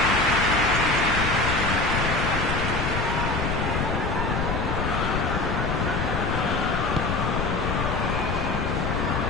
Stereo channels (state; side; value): noise; left; rumble, 1 dB below the sound